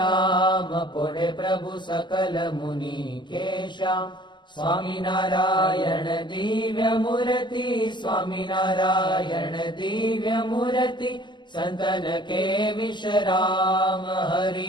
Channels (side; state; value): right; late; 0.22 ms